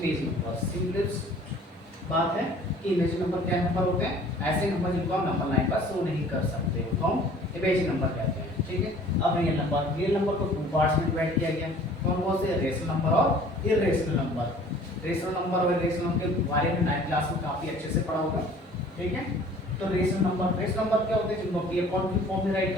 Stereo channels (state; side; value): normal; both; correlation 0.50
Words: number. सिंपल बात है कि इमेजिनरी नंबर क्या नंबर होते हैं? ऐसे नंबर जिनको हम नंबर लाइन पर शो नहीं कर सकते उनको हम इमेजिनरी नंबर कहते हैं। ठीक है, अब रियल नंबर को 2 पार्ट्स में डिवाइड किया गया। कौन से? रेशनल नंबर और इर्रेशनल नंबर। रेशनल नंबर और इर्रेशनल नंबर के बारे में 9th क्लास में काफी अच्छे से पढ़ा होगा। ठीक है, तो रेशनल नंबर क्या होते हैं? जिनको पी अपॉन क्यू फॉर्म में राइट